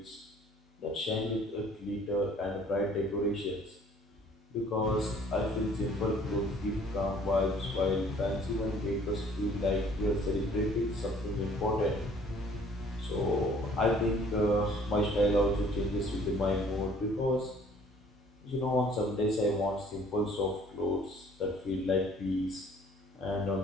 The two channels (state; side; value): normal; both; correlation 0.56